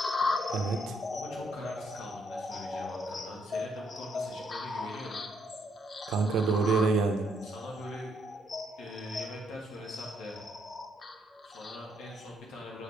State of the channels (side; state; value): both; normal; correlation 0.73